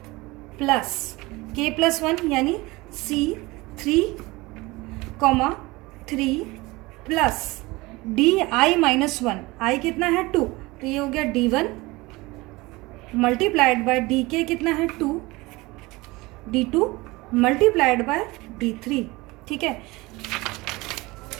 प्लस K प्लस 1 यानी C 3, 3 plus DI minus 1, I कितना है 2, तो ये हो गया D1 मल्टीप्लाइड बाय DK कितना है 2, D2 मल्टीप्लाइड बाय D3, ठीक है।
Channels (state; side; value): quieter; left; 22.0 dB